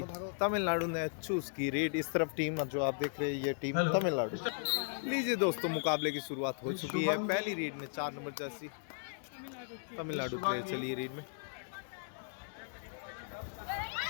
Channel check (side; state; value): right; silent; 53 dB below the other